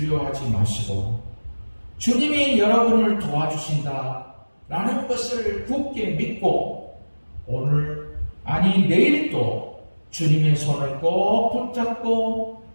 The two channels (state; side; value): inverted; both; correlation -1.00